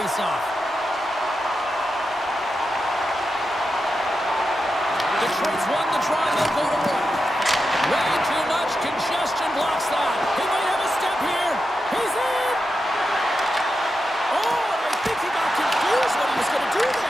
Detroit's won the draw, and they'll go to work. Way too much congestion blocks that. He might have a step here. He's in! Oh, and I think he got confused what he was going to do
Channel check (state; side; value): normal; both; correlation 0.88